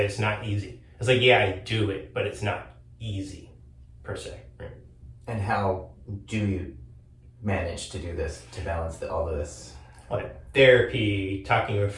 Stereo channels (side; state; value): both; identical; correlation 1.00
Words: it's not easy. It's like, yeah, I do it, but it's not easy per se. Right? And how do you manage to do this, to balance all of this? Like therapy, talking with